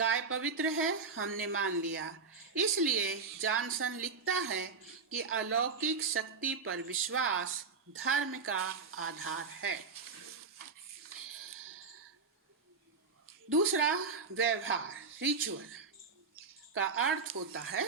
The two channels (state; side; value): quieter; left; 4.8 dB